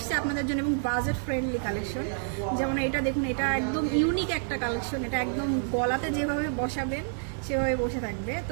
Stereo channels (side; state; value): left; silent; digital silence